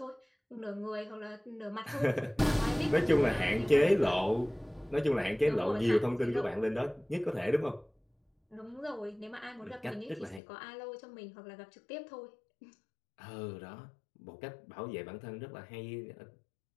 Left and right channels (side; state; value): right; drops out; at 10.4 s